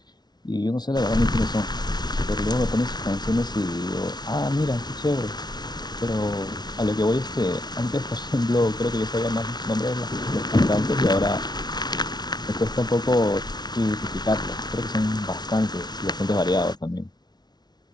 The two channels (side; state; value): right; late; 0.20 ms